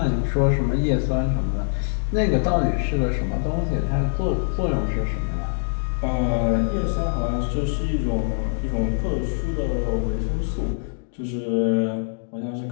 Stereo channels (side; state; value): right; silent; digital silence